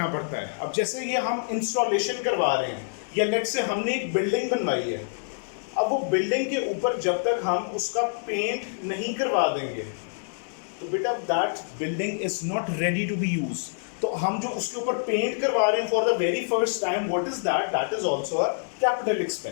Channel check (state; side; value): silent; right; digital silence